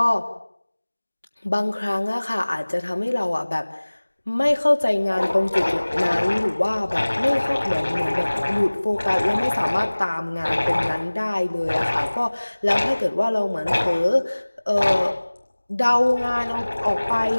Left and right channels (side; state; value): both; inverted; correlation -1.00